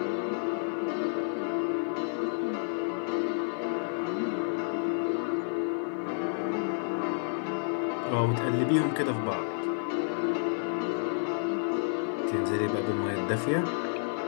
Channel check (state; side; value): silent; right; 58 dB below the other